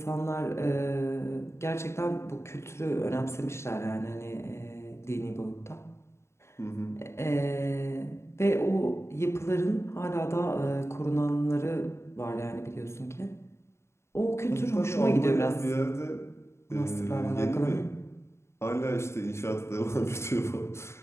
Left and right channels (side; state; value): right; late; 0.13 ms